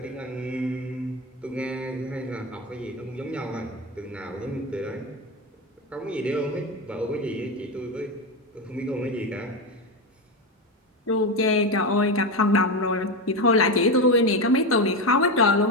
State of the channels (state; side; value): normal; both; correlation 0.15